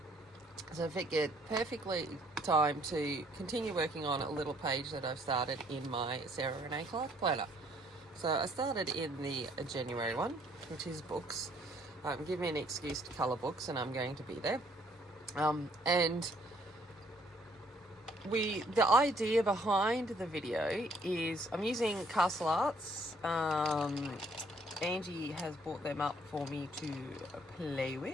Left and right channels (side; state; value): both; normal; correlation 0.64